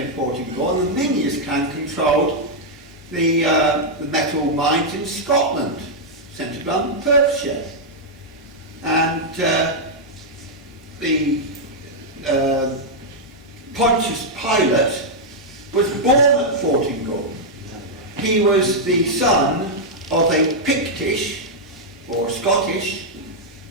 Fortingall, and the Miniers clan controlled the metal mines in Scotland, centred on Perthshire. And the Pontius Pilate was born at Fortingall. He was the son of a Pictish or Scottish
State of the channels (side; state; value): both; normal; correlation -0.04